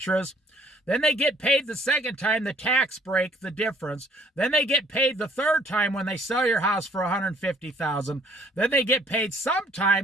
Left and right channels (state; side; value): normal; both; correlation 0.60